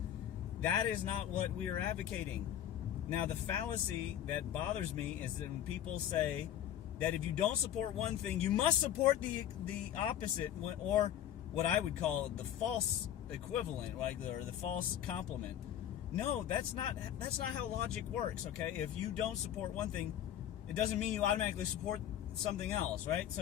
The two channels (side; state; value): right; quieter; 10.9 dB